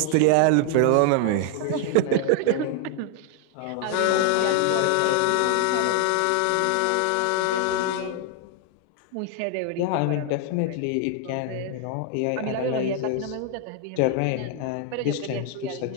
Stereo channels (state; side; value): different; both; correlation 0.00